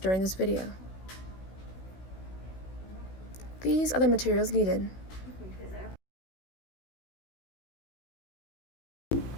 this video. These are the materials needed.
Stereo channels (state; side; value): late; right; 16 ms